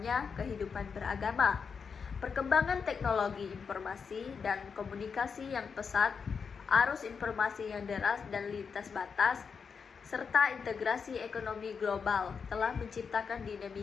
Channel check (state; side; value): quieter; right; 5.9 dB